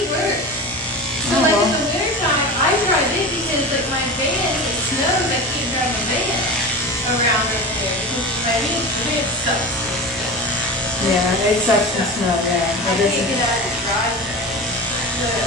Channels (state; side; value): normal; both; correlation 0.29